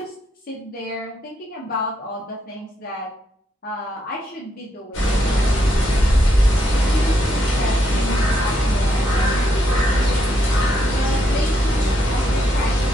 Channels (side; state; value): both; normal; correlation 0.78